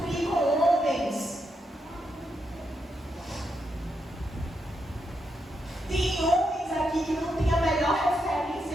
com homens. Tem homens aqui e que não tem a melhor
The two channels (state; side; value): normal; both; correlation 0.82